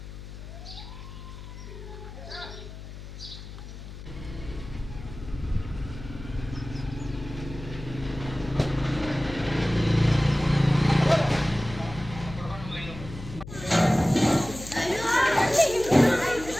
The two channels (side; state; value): left; noise; hum, 12 dB below the sound